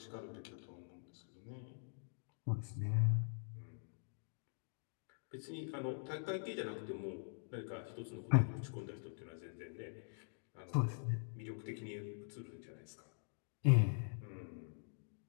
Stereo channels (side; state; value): right; silent; digital silence